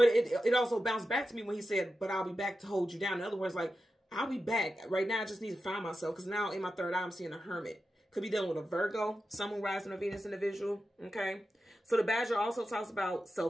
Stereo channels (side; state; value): both; normal; correlation 0.91